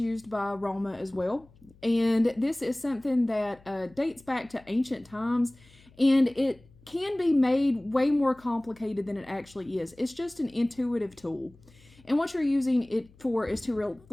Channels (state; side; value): noise; left; hum, 27 dB below the sound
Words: by Roma as well. And this is something that dates back to ancient times, and it can be made way more complicated than it actually is. It's just an intuitive tool. And what you're using it for is to